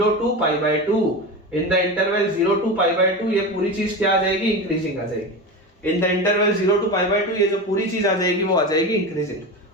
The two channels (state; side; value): normal; both; correlation 0.24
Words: to pi by 2, in the interval 0 to pi by 2 ये पूरी चीज क्या आ जाएगी, इंक्रीजिंग आ जाएगी। In the interval 0 to pi by 2 ये जो पूरी चीज आ जाएगी वो आ जाएगी इंक्रीजिंग।